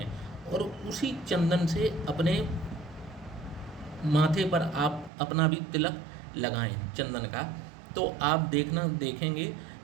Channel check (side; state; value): left; drops out; at 5.1 s